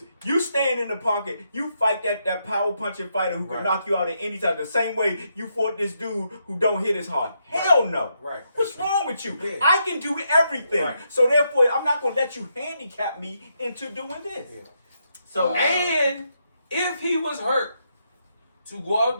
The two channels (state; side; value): inverted; both; correlation -0.79